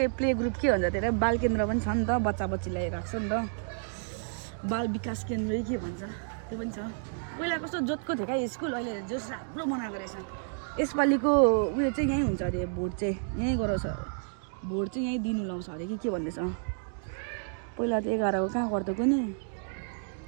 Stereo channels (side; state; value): left; silent; digital silence